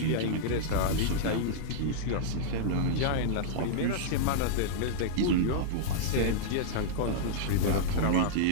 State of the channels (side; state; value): both; different; correlation -0.02